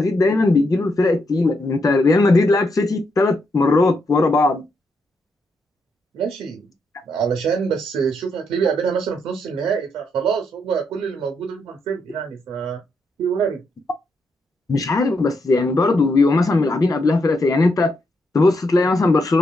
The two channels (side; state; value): both; normal; correlation 0.80